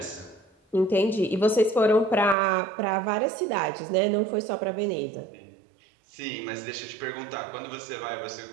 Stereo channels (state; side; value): drops out; left; at 2.4 s